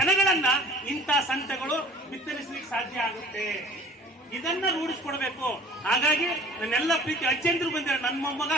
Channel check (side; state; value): both; normal; correlation 0.47